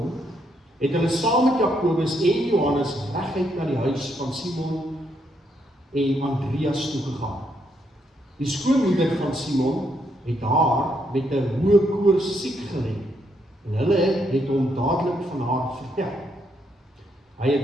het hulle saam met Jakobus en Johannes reguit na die huis van Simon en Andreas toegegaan. Die skoonmoeder van Simon het haar met 'n hoë koors siek gelê, en hulle het hom dadelik van haar vertel. Hy het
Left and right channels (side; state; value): both; normal; correlation 0.76